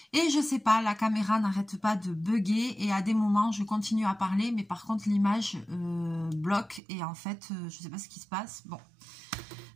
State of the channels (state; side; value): drops out; left; at 6.8 s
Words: et je sais pas, la caméra n'arrête pas de bugger et à des moments je continue à parler mais par contre l'image bloque et en fait je sais pas ce qui se passe. Bon,